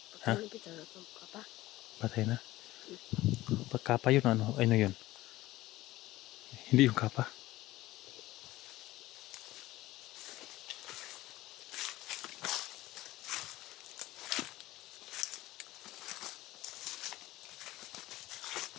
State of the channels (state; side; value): quieter; right; 17.2 dB